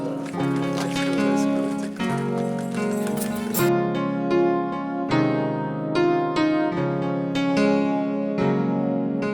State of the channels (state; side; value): identical; both; correlation 1.00